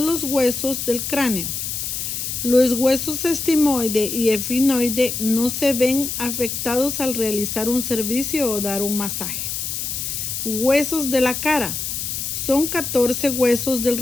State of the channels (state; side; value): noise; left; hiss, 4 dB below the sound